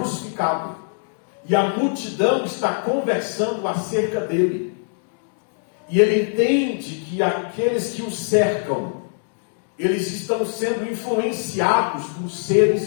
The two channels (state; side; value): silent; right; digital silence